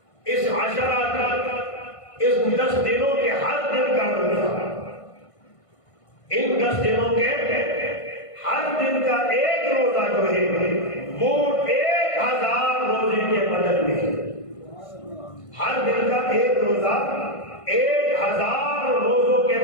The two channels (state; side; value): late; right; 1.5 ms